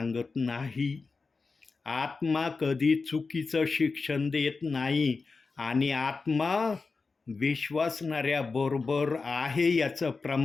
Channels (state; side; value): quieter; right; 4.3 dB